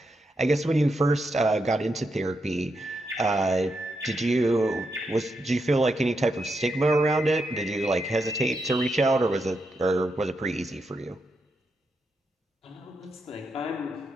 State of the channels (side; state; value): both; normal; correlation 0.83